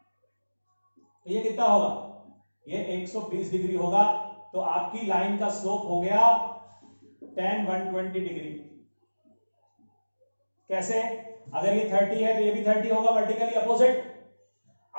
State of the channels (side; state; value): both; inverted; correlation -1.00